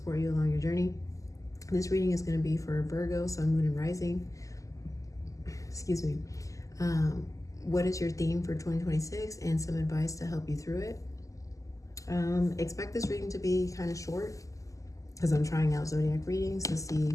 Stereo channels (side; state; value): right; late; 0.16 ms